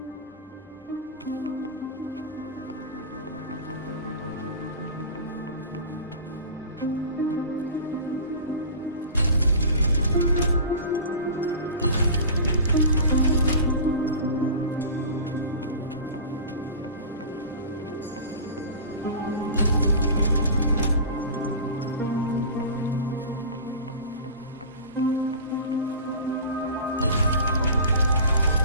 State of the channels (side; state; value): both; inverted; correlation -0.35